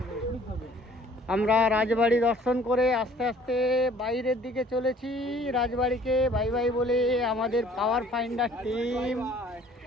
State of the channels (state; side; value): normal; both; correlation 0.55